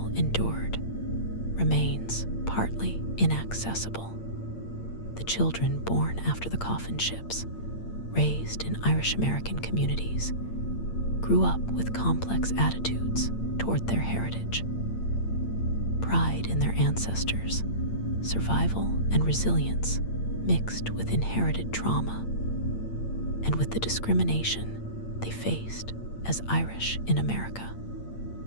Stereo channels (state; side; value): late; right; 8.7 ms